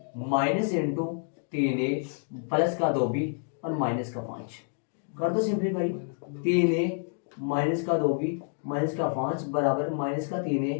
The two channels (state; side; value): silent; right; 59 dB below the other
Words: माइनस इंटू 3a प्लस का 2b और माइनस का 5 कर दो सिंप्लीफाई। 3a माइनस का 2b माइनस का 5 बराबर माइनस का 3a